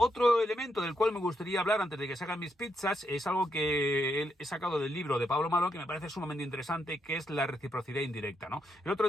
elemento del cual me gustaría hablar antes de que se hagan mis pizzas es algo que he sacado del libro de Pablo Malo, que me parece sumamente interesante, que es la reciprocidad indirecta, ¿no? El otro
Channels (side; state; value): both; normal; correlation 0.80